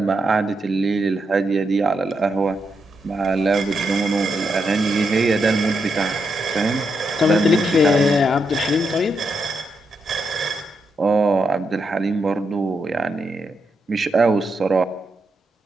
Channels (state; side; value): normal; both; correlation 0.82